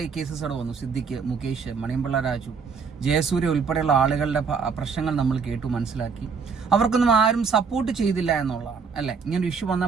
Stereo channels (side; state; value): left; quieter; 5.5 dB